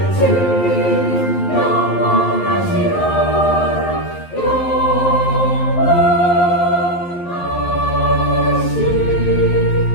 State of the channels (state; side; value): late; right; 11 ms